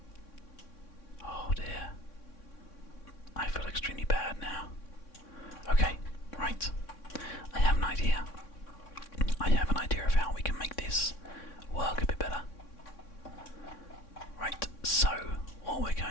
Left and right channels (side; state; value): right; late; 3.6 ms